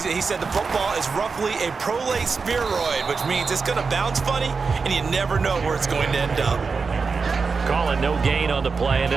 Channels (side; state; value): left; quieter; 4.8 dB